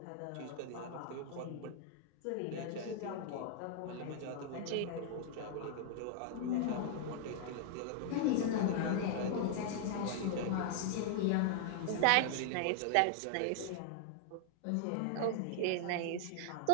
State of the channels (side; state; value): both; different; correlation -0.01